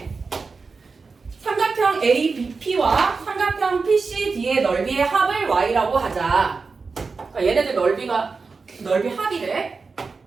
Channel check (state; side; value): quieter; left; 4.5 dB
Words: 삼각형 ABP와 삼각형 PCD의 넓이의 합을 y라고 하자. 그러니까 얘네들 넓이 합이래.